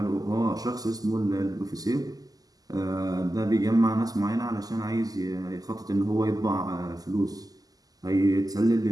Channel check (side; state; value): left; late; 0.18 ms